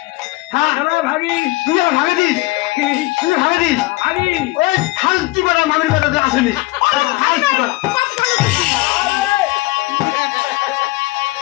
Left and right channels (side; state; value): right; quieter; 21.0 dB